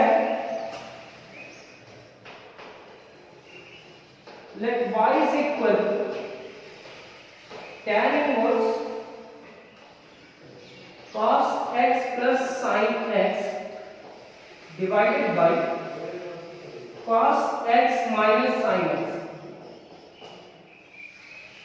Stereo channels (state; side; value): identical; both; correlation 1.00